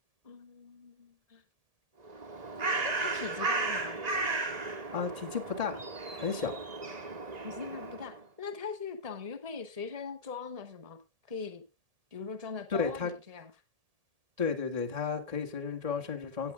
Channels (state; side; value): late; left; 1.7 ms